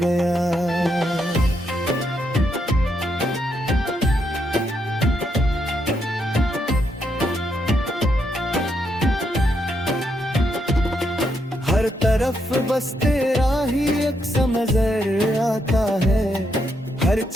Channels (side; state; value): both; normal; correlation 0.79